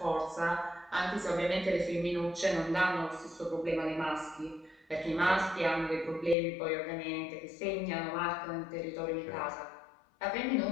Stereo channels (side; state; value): right; drops out; at 6.4 s